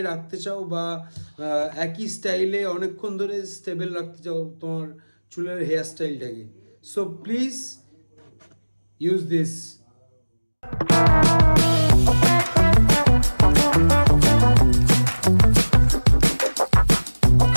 রাখতে চাও বা একই স্টাইলে অনেকক্ষণ ধরে স্টেবল রাখতে চাও তোমার চুলের হেয়ার স্টাইলটাকে, so please use this.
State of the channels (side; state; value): both; inverted; correlation -1.00